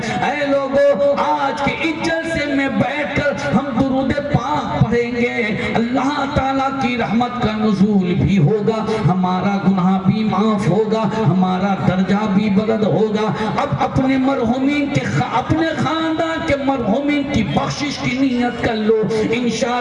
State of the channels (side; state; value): both; identical; correlation 1.00